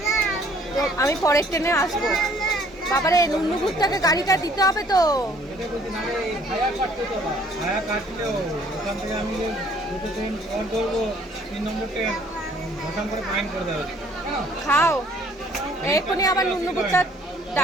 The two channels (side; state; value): both; normal; correlation 0.60